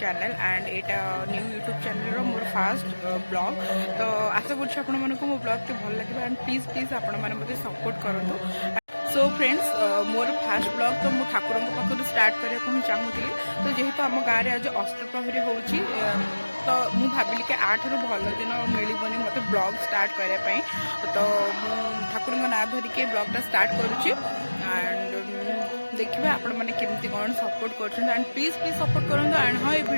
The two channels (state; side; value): inverted; both; correlation -1.00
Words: and यहाँ न्यू यूट्यूब चैनल मोर फास्ट ब्लॉग। तो आशा कर मो ब्लॉग के भल लगे एंड प्लीज प्लीज आपण मैंने सपोर्ट करूँ। सो फ्रेंड्स मोर फास्ट ब्लॉग तो मु ठाकुर पाखु स्टार्ट करने चाहूली। तो जेहेतु आम गाँव में आज अष्टप्रहरी हो तो मु भाविली कि आठ रु भल दिन मिलबनी मत ब्लॉग स्टार्ट करने। तो मु ठाकुर ना धरिके ब्लॉगटा स्टार्ट करुच्ची एंड देखिए आपण मैंने केमती कौन सपोर्ट कर एंड प्लीज प्लीज सपोर्ट करूँ। एंड हाँ ये